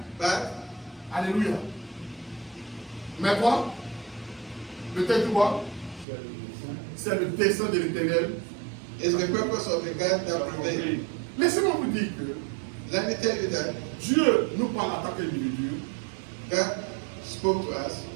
but alléluia. Mais quoi? Peut-être quoi? C'est le dessein de l'Éternel. it's the purpose of the God that prevails. Laissez-moi vous dire que Let me tell you that Dieu nous parle en tant qu'individu, God spoke to us.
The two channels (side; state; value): left; drops out; at 6.1 s